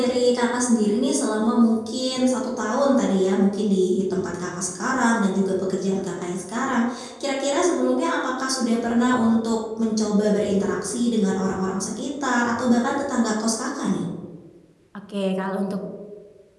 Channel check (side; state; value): both; identical; correlation 1.00